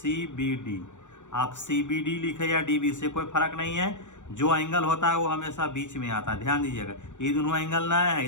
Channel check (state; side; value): late; right; 0.85 ms